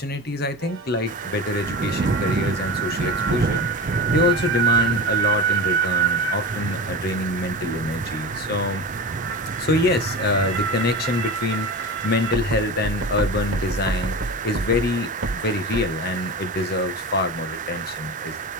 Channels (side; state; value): both; normal; correlation 0.28